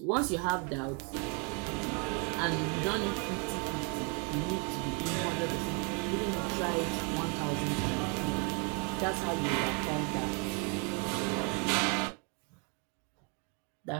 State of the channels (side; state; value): left; quieter; 35.2 dB